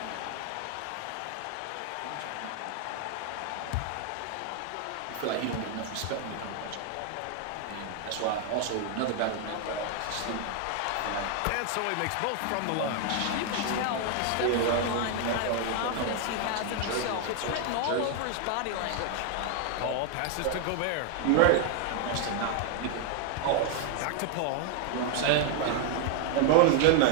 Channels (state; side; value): different; both; correlation 0.00